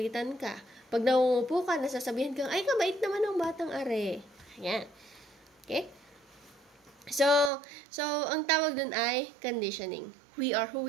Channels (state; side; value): drops out; left; at 7.5 s